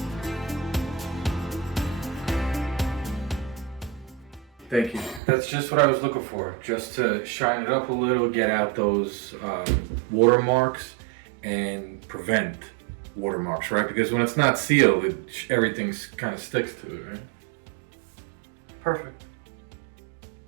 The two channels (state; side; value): drops out; left; at 5.2 s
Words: Thank you. That's just what I was looking for. Just to shine it up a little, get out those watermarks and prevent watermarks, right? Because when it's not sealed, everything's kind of sticks to it, right? Perfect.